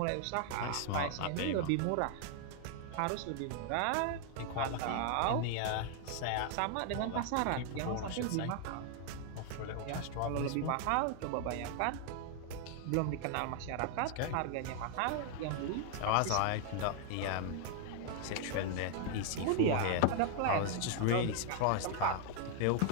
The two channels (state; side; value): different; both; correlation 0.00